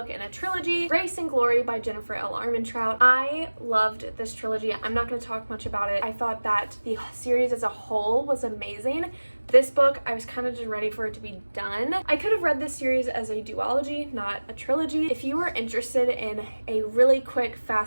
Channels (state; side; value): inverted; both; correlation -1.00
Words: in a trilogy, Grace and Glory by Jennifer L. Armentrout. I loved this trilogy. I'm not going to talk much about it. I thought that the series as a whole was amazing. This book, I was kind of just ready for it to be done. I could have read this series as a duology, not a trilogy. If you are interested in a really quick,